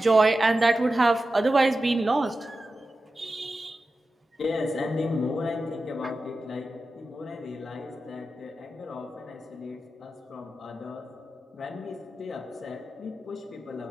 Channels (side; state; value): both; normal; correlation 0.93